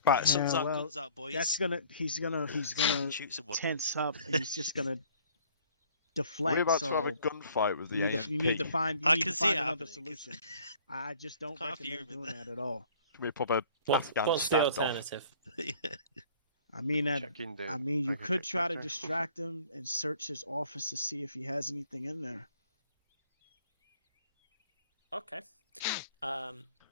Right, guns out, boys. He's gonna shoot someone. tense up, and he's just gonna deflect. We're about to have a gunfight with the AMP. You need to find. I can see it another happening. solution. I just don't recommend doing that at all. We pop a What's the alternative? I mean, you could try to distract him and search his office to see if he has anything in there. Okay.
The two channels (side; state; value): both; inverted; correlation -0.55